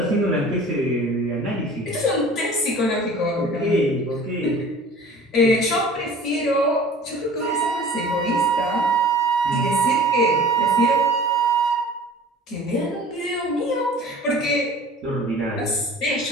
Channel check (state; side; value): normal; both; correlation 0.44